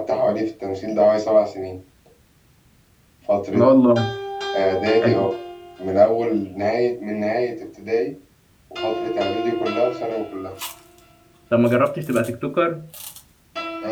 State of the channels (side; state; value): both; identical; correlation 1.00